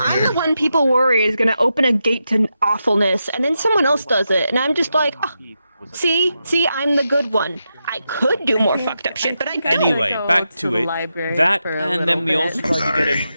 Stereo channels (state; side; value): inverted; both; correlation -0.87